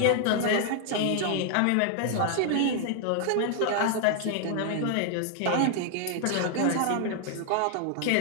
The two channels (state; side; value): different; both; correlation 0.00